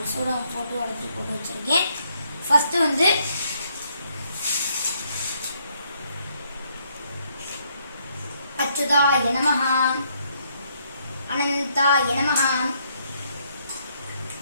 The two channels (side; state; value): both; inverted; correlation -0.71